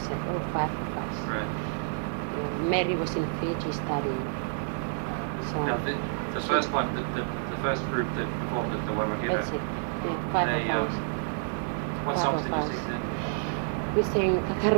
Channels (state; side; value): silent; left; digital silence